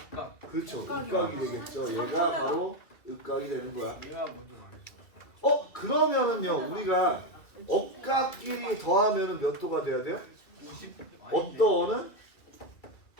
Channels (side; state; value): right; late; 2.3 ms